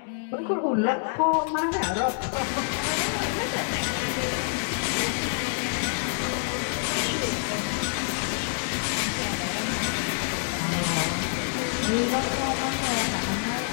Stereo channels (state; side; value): silent; right; digital silence